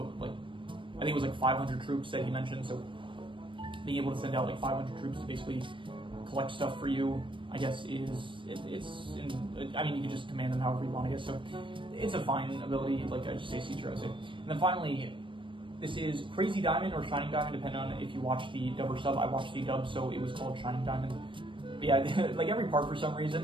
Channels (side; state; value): left; late; 0.24 ms